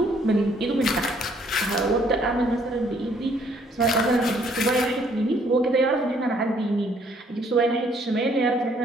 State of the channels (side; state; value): both; normal; correlation 0.64